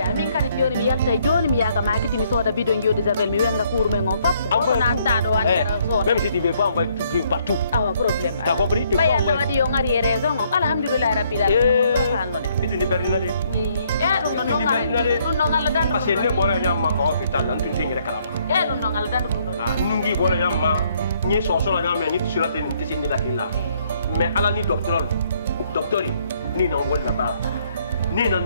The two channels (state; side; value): inverted; both; correlation -0.68